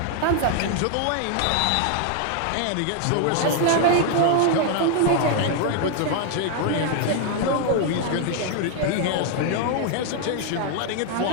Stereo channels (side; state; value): both; different; correlation 0.00